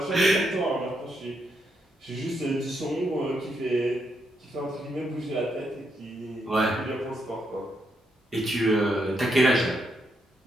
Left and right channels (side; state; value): both; normal; correlation 0.79